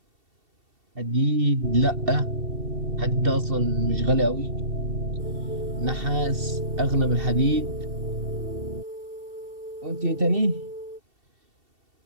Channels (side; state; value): left; late; 2.7 ms